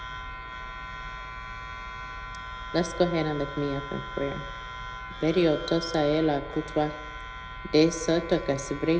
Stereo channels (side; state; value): both; identical; correlation 1.00